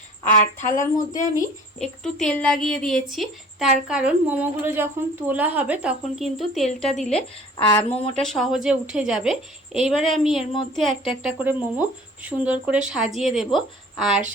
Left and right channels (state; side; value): normal; both; correlation 0.48